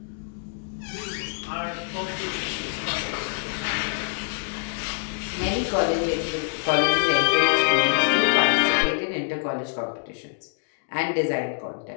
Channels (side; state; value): right; silent; digital silence